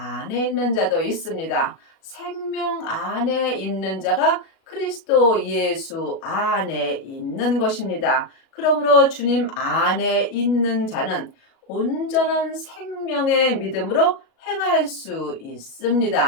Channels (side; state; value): right; late; 37 ms